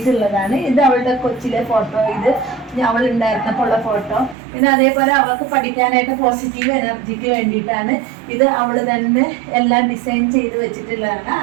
ഇത് അവളുടെ കൊച്ചിലെ ഫോട്ടോ, ഇത് അവൾ ഉണ്ടായിരുന്നപ്പോൾ ഉള്ള ഫോട്ടോ. പിന്നെ അതേപോലെ അവൾക്ക് പഠിക്കാനായിട്ട് പോസിറ്റീവ് എനർജിക്ക് വേണ്ടിയിട്ടാണ് ഇത് അവൾ തന്നെ എല്ലാം ഡിസൈൻ ചെയ്ത് വെച്ചിട്ടുള്ളതാണ്.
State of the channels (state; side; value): drops out; left; at 4.4 s